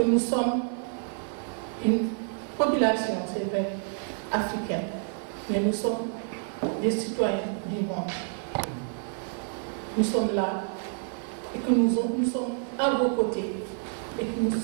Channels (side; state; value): left; silent; 59 dB below the other